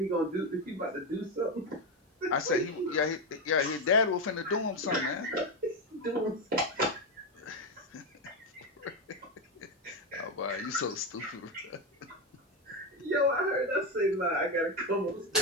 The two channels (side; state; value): both; normal; correlation 0.11